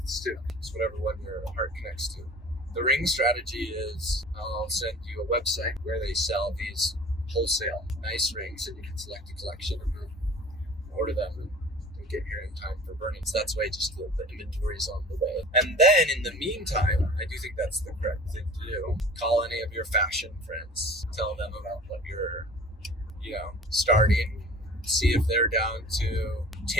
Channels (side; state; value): both; normal; correlation 0.44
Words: too. It's whatever one your heart connects to. The ring strategy is I'll send you a website where they sell these wholesale nice rings, and you can select a collection and then order them and get here in time for burning. So that's why just the inventory is on the way. And then in the meantime, I do think that's the correct thing to do. Call any of your fashion friends, tell them about what you're, starting. See if they're down to